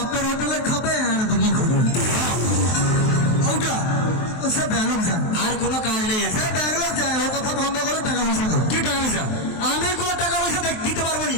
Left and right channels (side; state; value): right; late; 23 ms